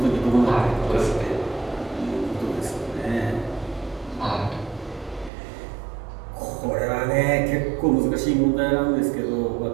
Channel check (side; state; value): left; drops out; at 5.3 s